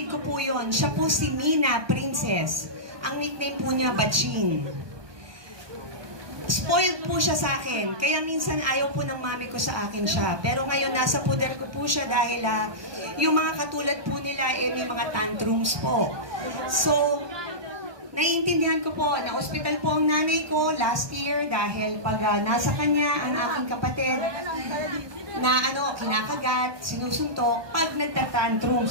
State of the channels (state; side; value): late; left; 1.2 ms